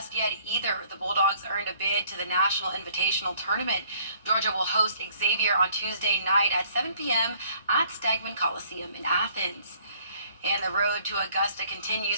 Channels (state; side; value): inverted; both; correlation -0.60